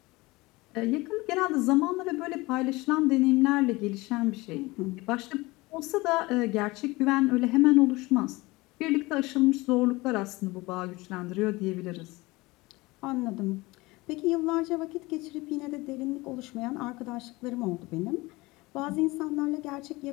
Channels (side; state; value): right; quieter; 21.9 dB